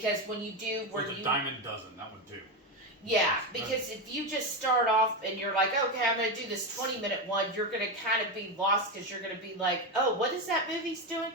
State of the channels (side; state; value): both; normal; correlation 0.13